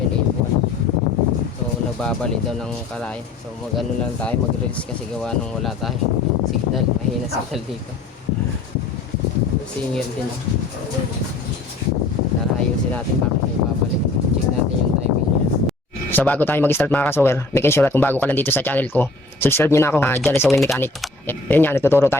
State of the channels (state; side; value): quieter; right; 3.3 dB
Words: So nagbabalik daw ng kalay. So mag ano lang tayo, mag-release kasi gawa nung wala tayo signal, mahina signal dito. Singil din. Tara ayusin natin bakit may babalik. Check natin yung timing niya. So bago tayo mag-start mga kasower, make sure at kung bago ka lang dito sa channel ko, subscribe nyo na ako, Jale Sewing Mechanic. Yan nga, nagtuturo